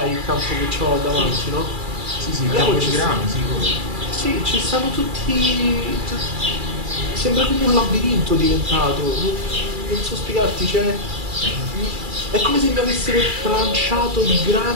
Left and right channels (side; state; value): left; late; 2.4 ms